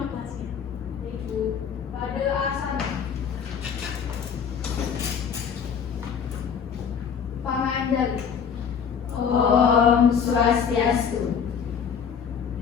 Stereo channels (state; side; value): quieter; right; 7.1 dB